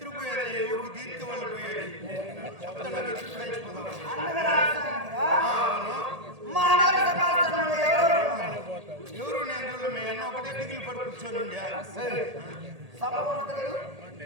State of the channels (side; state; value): left; late; 1.8 ms